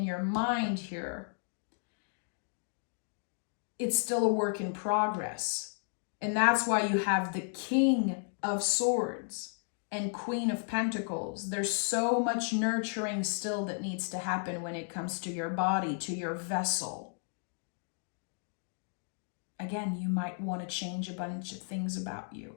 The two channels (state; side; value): silent; right; 55 dB below the other